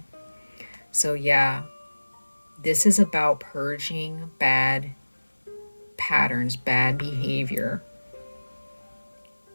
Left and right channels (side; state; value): both; inverted; correlation -1.00